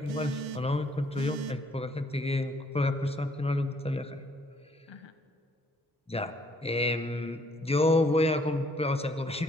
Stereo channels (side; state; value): both; normal; correlation 0.65